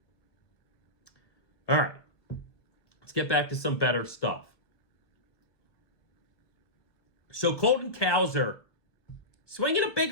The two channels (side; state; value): right; late; 1.3 ms